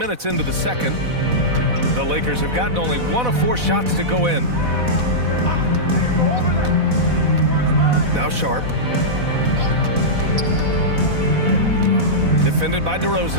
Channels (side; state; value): left; late; 4.1 ms